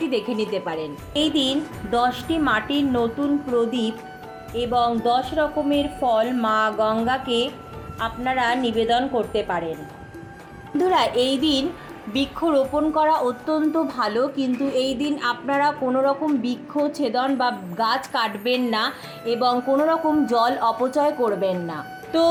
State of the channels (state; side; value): identical; both; correlation 1.00